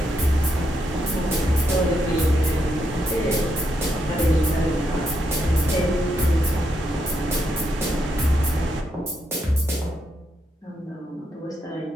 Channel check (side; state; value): both; normal; correlation 0.80